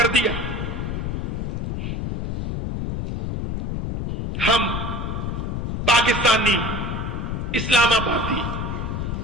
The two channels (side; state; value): left; noise; rumble, 3 dB below the sound